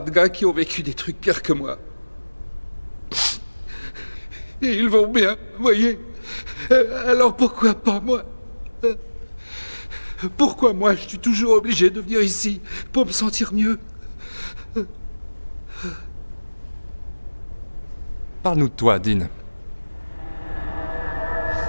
de gars qui ont vécu des trucs pires que moi. Et ils vont bien, voyez. Alors pourquoi pas moi? Pourquoi moi, je suis toujours obligé de venir ici pour me sentir mieux? Parle-nous de toi, Dean.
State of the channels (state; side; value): inverted; both; correlation -1.00